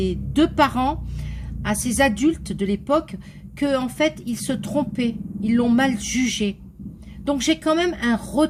deux parents, à ces adultes de l'époque, que en fait, ils se trompaient, ils l'ont mal jugé. Donc j'ai quand même un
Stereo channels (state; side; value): identical; both; correlation 1.00